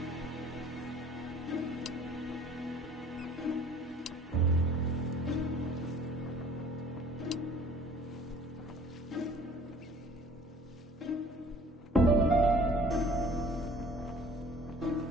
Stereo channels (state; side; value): normal; both; correlation 0.51